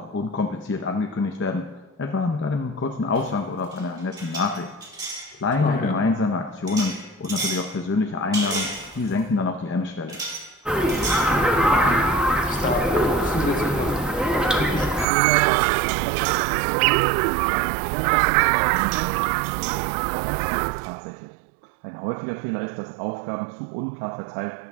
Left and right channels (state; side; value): drops out; left; at 15.1 s